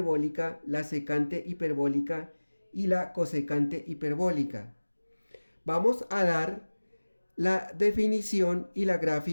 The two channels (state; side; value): inverted; both; correlation -1.00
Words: la secante hiperbólica y la cosecante hiperbólica. Vamos a dar la definición y la